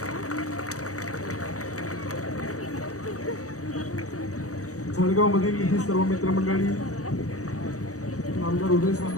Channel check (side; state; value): right; late; 0.66 ms